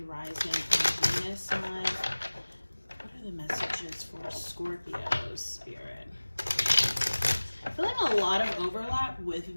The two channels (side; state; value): both; inverted; correlation -1.00